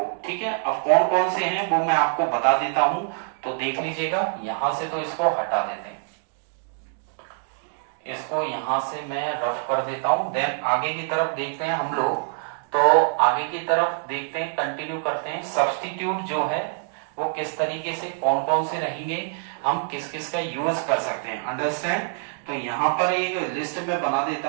ठीक है। अब कौन कौन से हैं वो मैं आपको बता देता हूं, तो देख लीजिएगा। यहां से तो इसको हटा देते हैं, इसको यहां से मैं रफ कर देता हूं, देन आगे की तरफ देखते हैं हम लोग। तो आगे की तरफ देखते हैं, कंटिन्यू करते हैं। सब्स्टिट्यूट जो है वो किस तरीके से, कौन कौन से रहेंगे, हम किस किस का यूज कर सकते हैं, अंडरस्टैंड। तो यहाँ पर एक लिस्ट में बना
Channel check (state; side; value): silent; left; digital silence